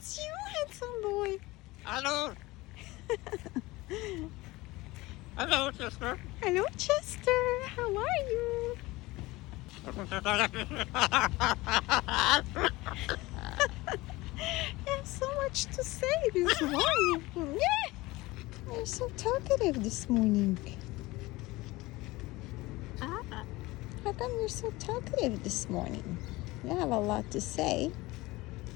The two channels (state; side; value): quieter; right; 20.5 dB